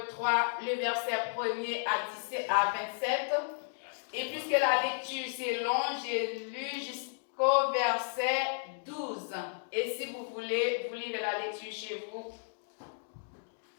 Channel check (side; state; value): right; silent; digital silence